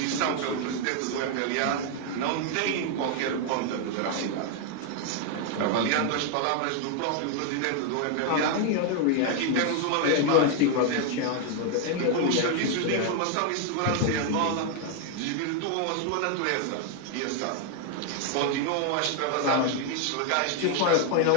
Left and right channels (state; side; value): different; both; correlation 0.01